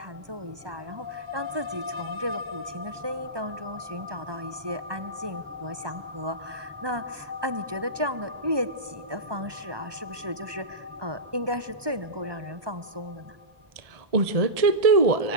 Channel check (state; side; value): late; left; 1.2 ms